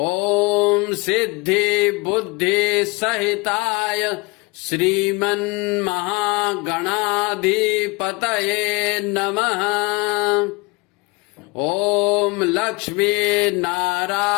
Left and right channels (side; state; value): right; quieter; 25.3 dB